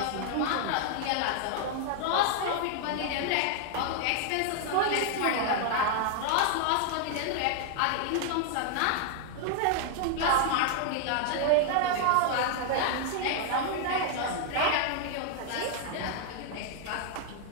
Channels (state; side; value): different; both; correlation 0.00